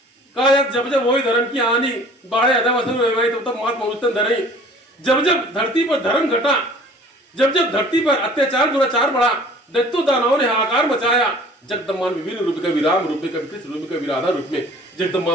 कहा यार जब जब वही धर्म की हानि बाढ़े अधवसुर तब तब मात मनुष्य धरई। जब जब धरती पर धर्म घटा, जब जब धरती पर अत्याचार दुराचार बढ़ा, दैत्यों दानवों ने हाहाकार मचाया, जगदम्बा ने विभिन्न रूप कभी राम रूप में, कभी कृष्ण रूप में, कभी राधा रूप में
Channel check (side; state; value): both; normal; correlation 0.49